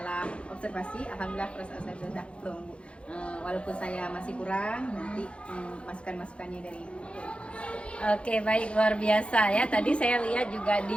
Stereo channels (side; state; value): right; late; 0.059 ms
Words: observasi, alhamdulillah perasaan saya sudah plong Bu. Walaupun saya masih kurang, nanti masukan-masukannya dari Ibu. Oke, baik, luar biasa ya. Tadi saya lihat juga